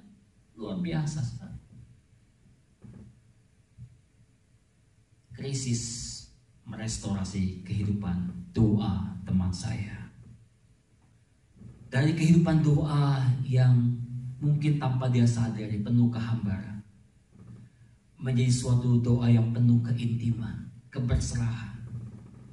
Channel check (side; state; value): both; identical; correlation 1.00